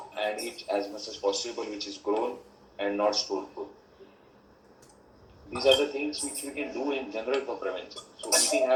and eat as much as possible which is grown and not stored food. These are the things which we can do in general for prevention. So eating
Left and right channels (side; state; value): both; identical; correlation 1.00